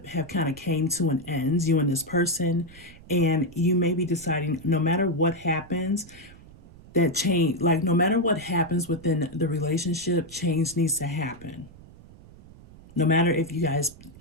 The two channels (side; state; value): right; noise; rumble, 21 dB below the sound